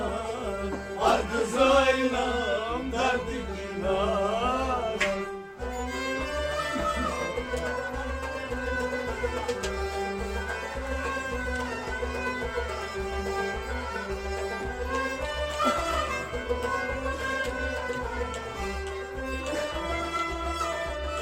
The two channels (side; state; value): both; identical; correlation 1.00